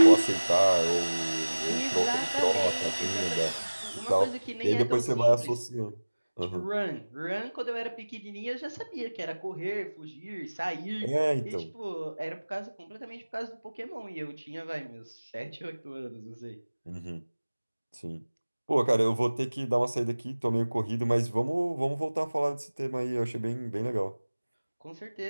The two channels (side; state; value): both; inverted; correlation -1.00